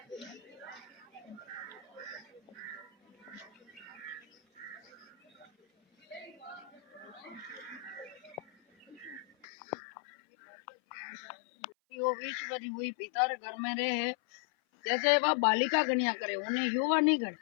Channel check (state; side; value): drops out; right; at 9.5 s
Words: वो विश्वरी हुई पिता रे घर में रहे जैसे वह बालिका कन्या करे उन्हें युवा नहीं करे